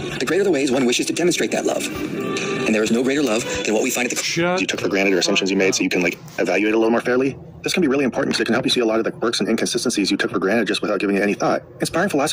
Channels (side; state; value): both; identical; correlation 1.00